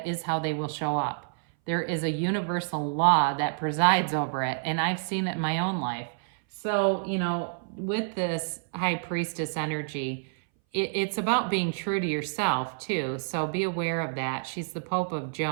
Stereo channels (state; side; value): silent; left; 58 dB below the other